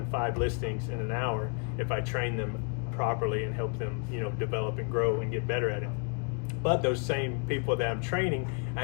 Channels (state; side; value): quieter; right; 39.0 dB